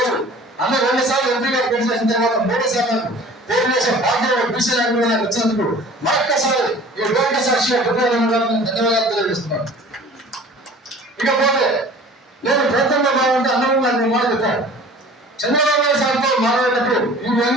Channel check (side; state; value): both; normal; correlation 0.45